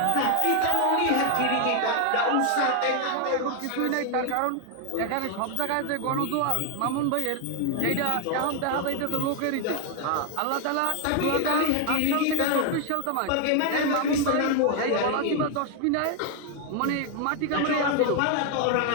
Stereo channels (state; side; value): different; both; correlation 0.00